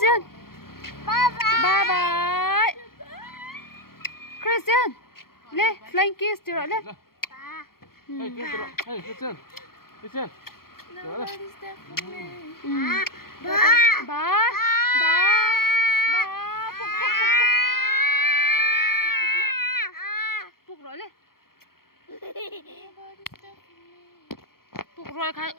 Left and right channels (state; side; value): late; right; 0.93 ms